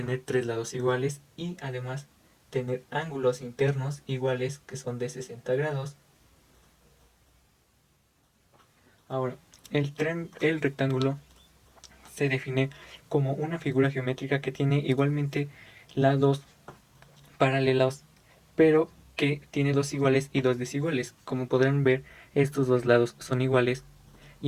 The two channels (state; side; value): identical; both; correlation 1.00